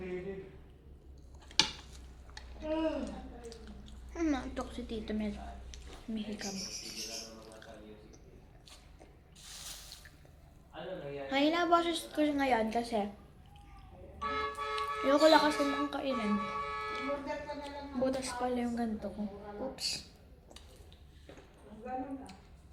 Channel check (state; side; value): identical; both; correlation 1.00